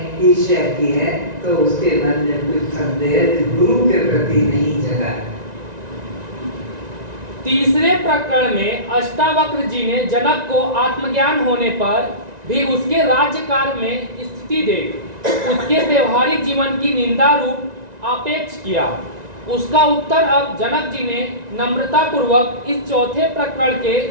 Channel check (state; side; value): late; left; 1.9 ms